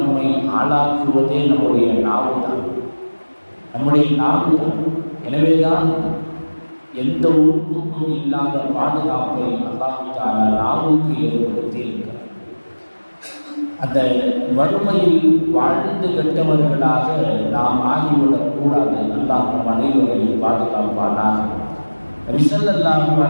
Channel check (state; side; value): inverted; both; correlation -1.00